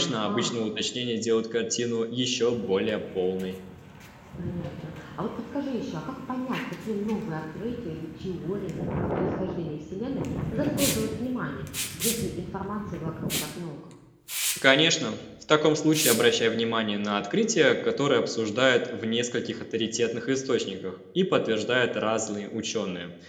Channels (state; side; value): identical; both; correlation 1.00